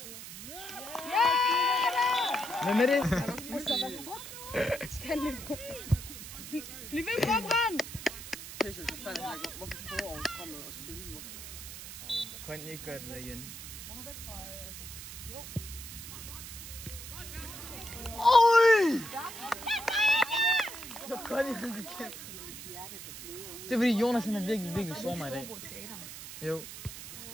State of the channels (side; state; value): right; noise; hiss, 11 dB below the sound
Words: Hvem er det? Skal han Bliv ved på brand! Jesus, hvad fanden er det? Hvorfor prøver at komme og spille nu? Kan I ikke gøre det der igen? Oj! Så godt I det kan. Det er fordi Jonas han er virkelig sår mig i dag. Jo.